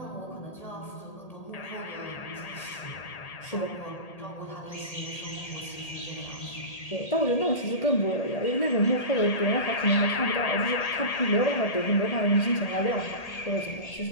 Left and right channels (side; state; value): right; late; 1.8 ms